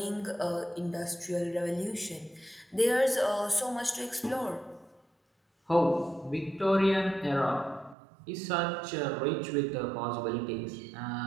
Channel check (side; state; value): left; drops out; at 8.0 s